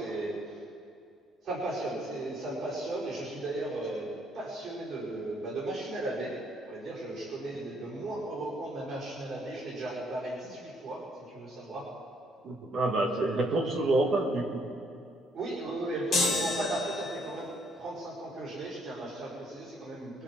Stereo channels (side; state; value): both; normal; correlation 0.68